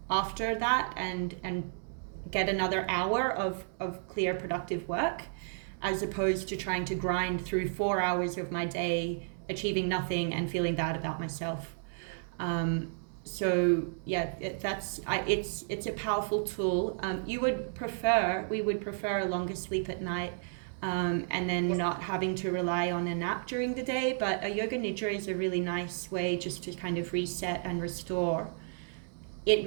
after that and get another hour of clear, productive work, as opposed to trying to grind through 4 hours of my day, achieving nothing and feeling bad about myself. So yeah, it's a powerful tool. We would prefer a longer sleep at night, and then not having to rely on a nap during the day. But a yoga nidra is a really nice way just to kind of reset and restore. It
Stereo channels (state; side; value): silent; left; digital silence